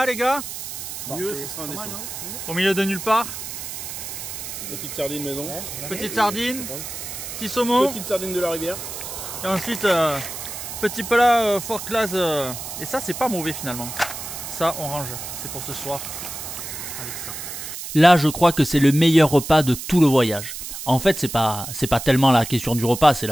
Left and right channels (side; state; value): right; noise; hiss, 8 dB below the sound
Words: les gars? Mieux, ce sera un dessin. Au milieu de nulle part. Petite sardine maison. Petite sardine, petit saumon. Petite sardine de la rivière. Et ensuite, petit plat fort classe. Et ça, c'est pas mauvais finalement. Ça, on range. C'est pour ce soir. Avec ça. Là, je crois que c'est le meilleur repas de tout le voyage. En fait, c'est pas tellement la question du repas, c'est